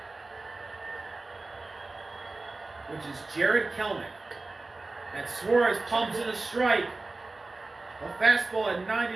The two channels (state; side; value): quieter; left; 3.3 dB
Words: Which is Jared Kelnick. And Suarez pumps in a strike. A fastball at